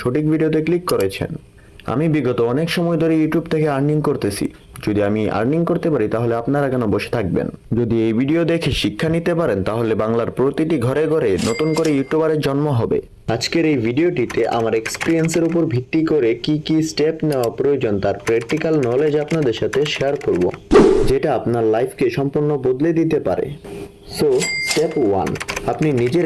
সঠিক ভিডিওতে ক্লিক করেছেন। আমি বিগত অনেক সময় ধরে ইউটিউব থেকে আর্নিং করতেছি। যদি আমি আর্নিং করতে পারি তাহলে আপনারা কেন বসে থাকবেন? যদি এই ভিডিও দেখে শিক্ষা নিতে পারেন তাহলে বাংলার প্রতিটি ঘরে ঘরে নতুন করে ইউটিউবারের জন্ম হবে। আজকের এই ভিডিওটিতে আমার এক্সপিরিয়েন্সের উপর ভিত্তি করে কি কি স্টেপ নেওয়া প্রয়োজন তার প্র্যাকটিক্যাল নলেজ আপনাদের সাথে শেয়ার করব, যেটা আপনার লাইফকে সম্পূর্ণ বদলে দিতে পারে। সো স্টেপ 1, আপনি নিজের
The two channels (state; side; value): identical; both; correlation 1.00